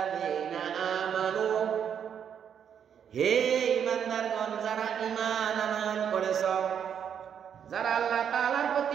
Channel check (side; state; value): left; quieter; 8.2 dB